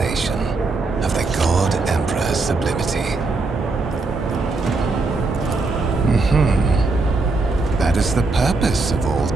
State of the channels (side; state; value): left; quieter; 3.6 dB